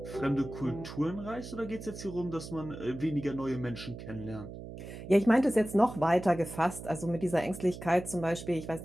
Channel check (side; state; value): right; noise; hum, 11 dB below the sound